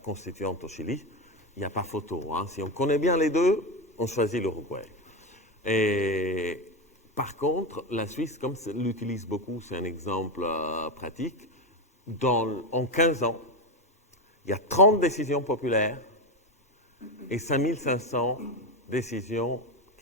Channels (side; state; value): both; normal; correlation 0.12